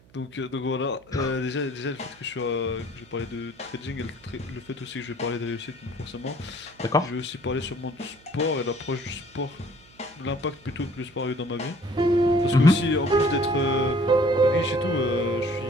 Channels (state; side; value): noise; right; hum, 28 dB below the sound